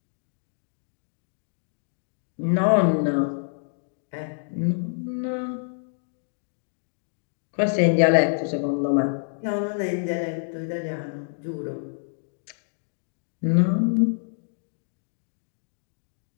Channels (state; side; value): silent; right; digital silence